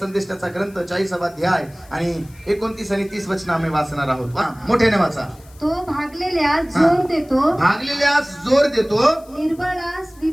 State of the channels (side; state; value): left; noise; hiss, 26 dB below the sound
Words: ग्रंथ 40वा अध्याय आणि 29 आणि 30 वचन आम्ही वाचणार आहोत. मोठ्याने वाचा. तो भागलेल्यास जोर देतो, भागलेल्यास जोर देतो, निर्बळास